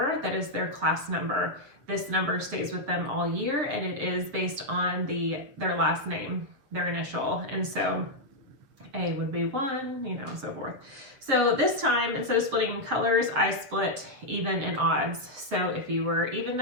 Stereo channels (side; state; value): left; late; 7.5 ms